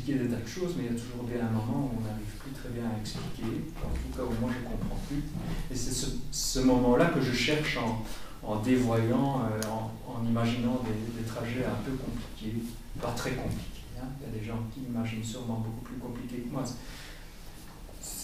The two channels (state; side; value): identical; both; correlation 1.00